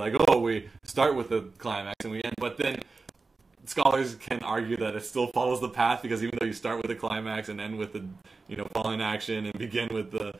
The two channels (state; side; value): quieter; left; 4.0 dB